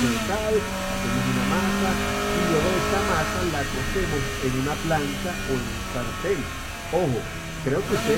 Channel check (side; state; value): both; identical; correlation 1.00